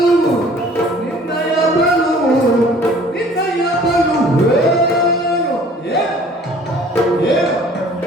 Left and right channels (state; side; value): normal; both; correlation 0.52